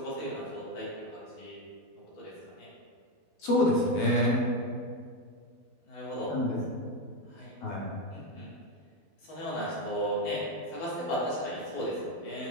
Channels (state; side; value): late; right; 12 ms